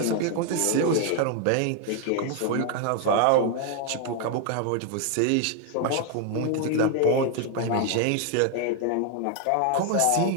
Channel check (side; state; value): both; different; correlation 0.00